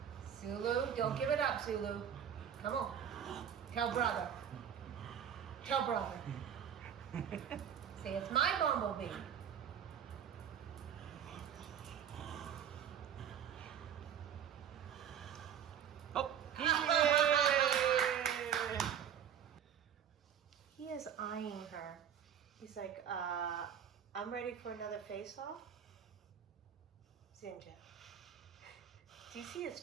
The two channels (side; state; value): left; quieter; 9.0 dB